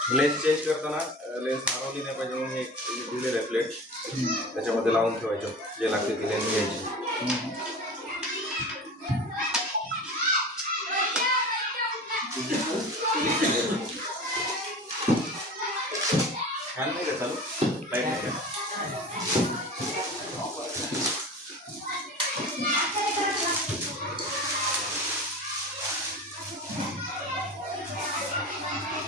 लेन्स चेंज करताना लेन्स हरवली नाही पाहिजे म्हणून एक दिलेलं आहे प्लेट त्याच्यामध्ये लावून ठेवायचं जे लागते ती लेन्स घ्यायची. फॅन नाही का चालू लाईट नाही का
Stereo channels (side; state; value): both; normal; correlation 0.34